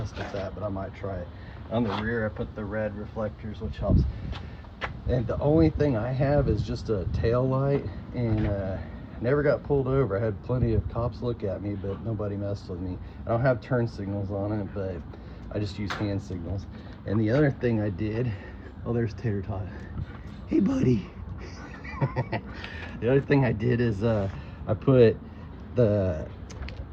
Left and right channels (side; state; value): both; identical; correlation 1.00